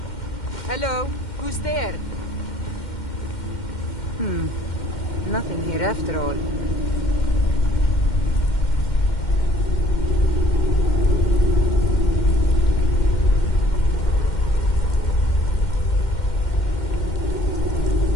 Hello? Who's there? Nothing here after all.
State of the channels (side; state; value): right; late; 2.1 ms